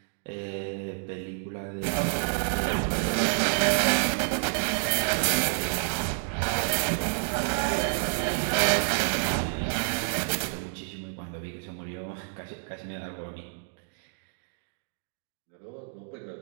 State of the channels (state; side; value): silent; left; digital silence